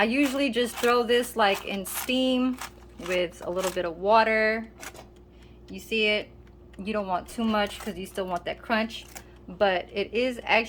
usually just throw this like in steam with a little bit of water. You see it? You don't want too much because you still want that crunch, but it is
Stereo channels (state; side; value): identical; both; correlation 1.00